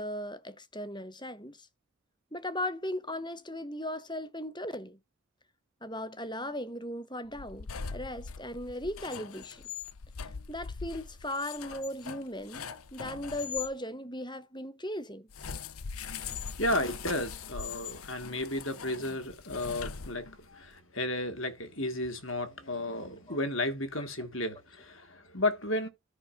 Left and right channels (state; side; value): normal; both; correlation 0.05